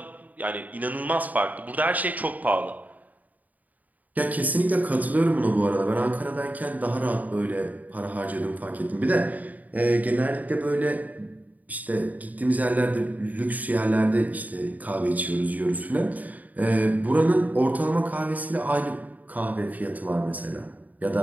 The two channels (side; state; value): left; late; 0.077 ms